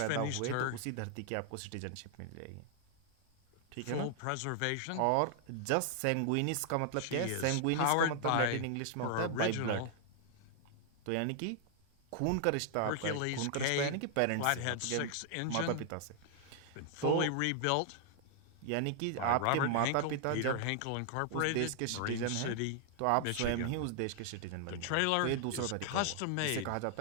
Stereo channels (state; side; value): different; both; correlation 0.00